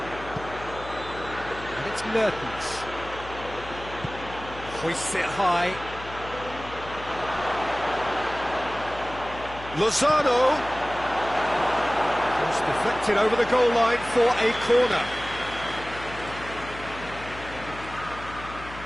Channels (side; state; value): left; noise; hum, 14 dB below the sound